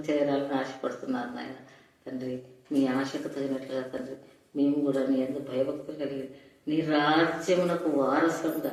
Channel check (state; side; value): identical; both; correlation 1.00